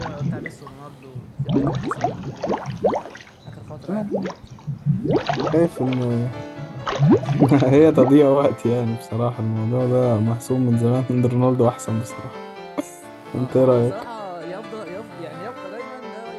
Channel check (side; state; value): both; identical; correlation 1.00